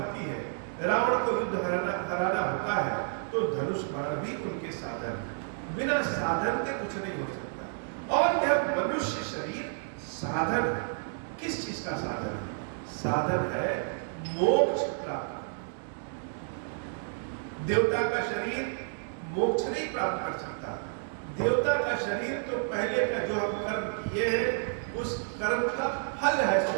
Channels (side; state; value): left; silent; digital silence